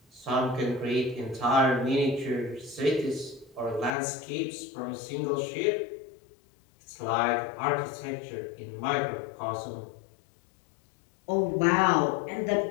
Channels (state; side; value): drops out; right; at 4.0 s